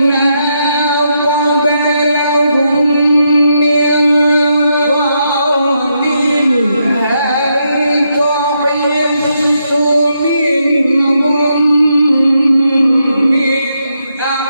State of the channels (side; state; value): both; inverted; correlation -0.80